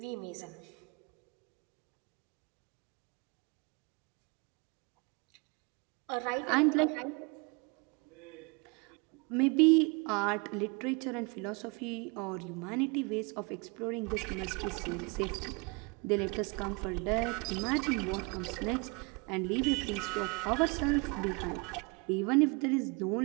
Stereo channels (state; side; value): quieter; left; 30.5 dB